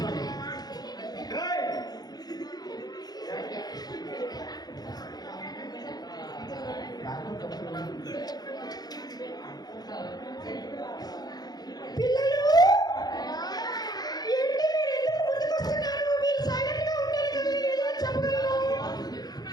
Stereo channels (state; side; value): late; right; 0.19 ms